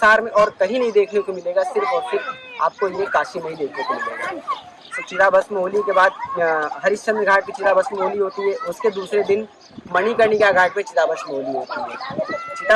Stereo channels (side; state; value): both; identical; correlation 1.00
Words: में और कहीं नहीं देखने को मिलेगा, सिर्फ और सिर्फ आपको ये काशी में ही देखने को मिलेगा। तो चिता भस्म होली के बाद हरिश्चंद्र घाट की चिता भस्म होली होती है। उसके दूसरे दिन मणिकर्णिका घाट पे चिता भस्म होली होती है।